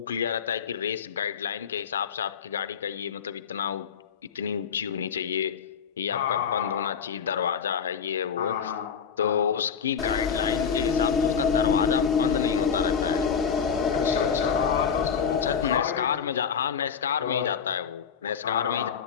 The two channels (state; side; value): quieter; right; 6.9 dB